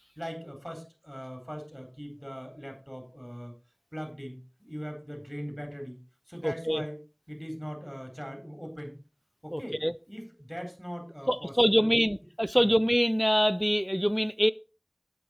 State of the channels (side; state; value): both; identical; correlation 1.00